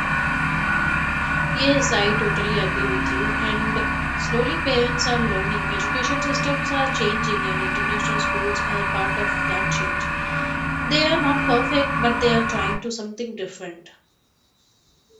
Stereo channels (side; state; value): both; identical; correlation 1.00